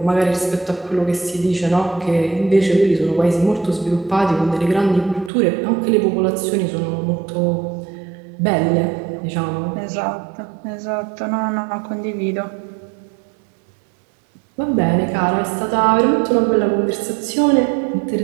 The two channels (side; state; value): left; drops out; at 5.3 s